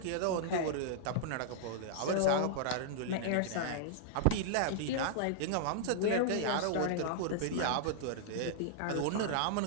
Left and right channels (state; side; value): different; both; correlation -0.02